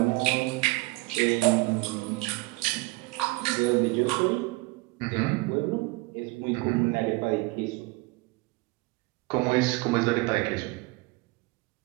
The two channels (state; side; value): quieter; left; 23.7 dB